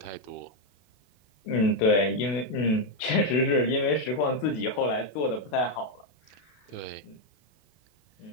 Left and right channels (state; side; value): late; right; 32 ms